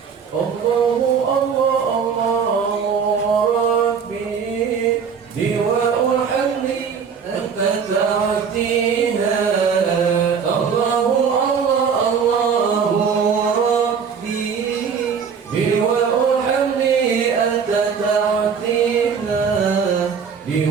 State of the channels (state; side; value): quieter; left; 6.5 dB